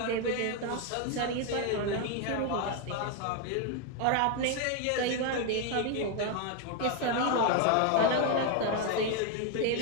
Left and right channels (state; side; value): different; both; correlation 0.01